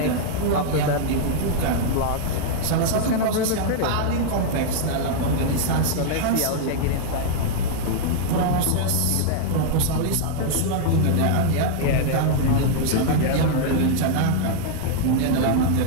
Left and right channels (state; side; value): different; both; correlation -0.01